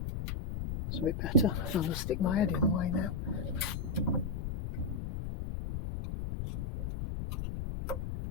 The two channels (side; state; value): left; noise; rumble, 4 dB below the sound